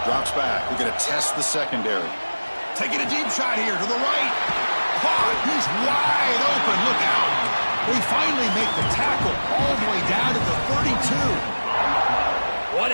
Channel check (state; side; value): inverted; both; correlation -1.00